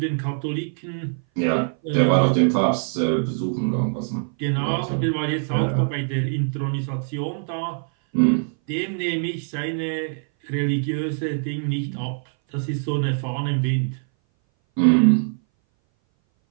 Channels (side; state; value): left; silent; 59 dB below the other